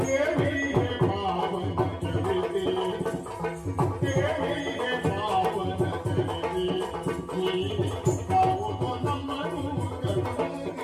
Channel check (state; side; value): identical; both; correlation 1.00